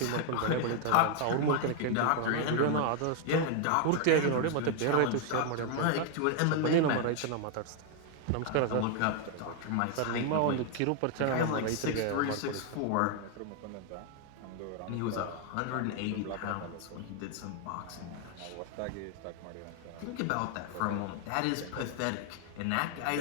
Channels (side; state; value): both; different; correlation 0.01